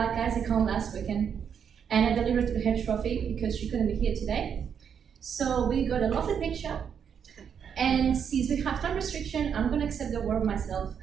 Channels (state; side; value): quieter; left; 7.6 dB